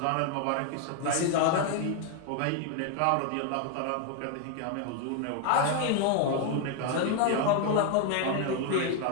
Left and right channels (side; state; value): both; different; correlation 0.01